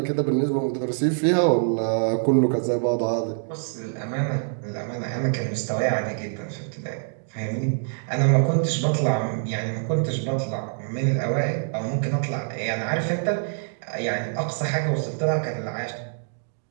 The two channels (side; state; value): left; silent; digital silence